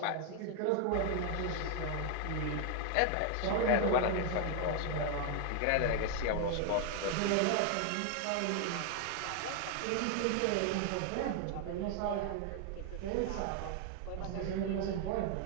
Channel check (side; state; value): both; different; correlation 0.00